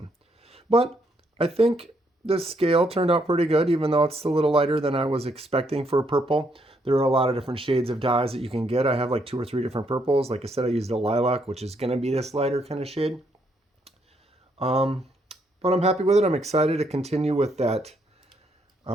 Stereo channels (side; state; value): both; normal; correlation 0.74